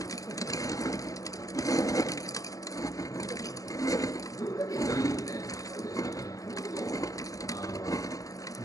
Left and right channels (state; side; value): late; right; 0.17 ms